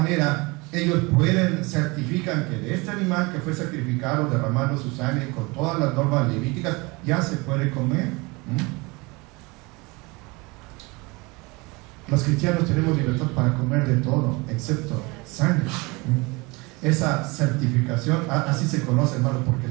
ellos certifican que de este animal que fue sacrificado derramando su sangre con todas las normas levíticas ya se puede comer. Los cristianos tenemos libertad para comer de todo, excepto sangre. Esa certificación, así se conoce, hermano, porque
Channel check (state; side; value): quieter; left; 25.6 dB